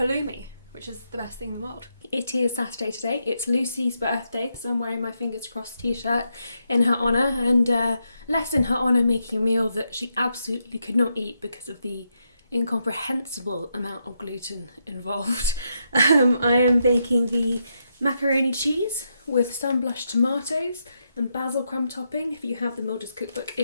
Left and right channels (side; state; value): both; inverted; correlation -0.81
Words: which is the best thing in the world. It is Saturday today, it's Lucy's birthday, so I'm wearing my fingers crossed t-shirt in her honour, and less in her honour making a meal that she absolutely could not eat because of the incomprehensible amount of gluten involved. I am baking the macaroni cheese with sunblush tomatoes and basil crumb topping. If you have the Mildred's cookbook,